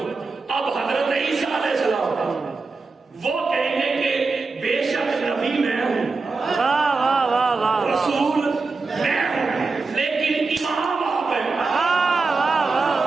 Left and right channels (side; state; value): left; quieter; 4.1 dB